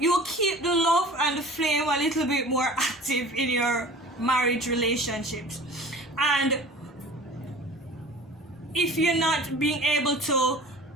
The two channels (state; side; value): normal; both; correlation 0.42